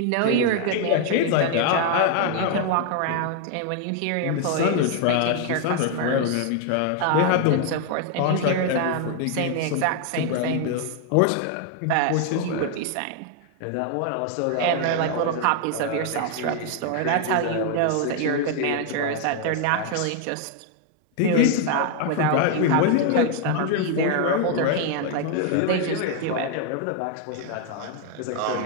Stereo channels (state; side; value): different; both; correlation 0.01